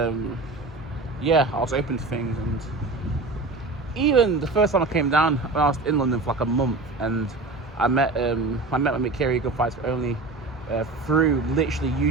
I was open to things, and even the first time I came down, when I was in London for like a month, and I met my mate Kerry, Good Fights For Only, through literally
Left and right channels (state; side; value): quieter; left; 3.4 dB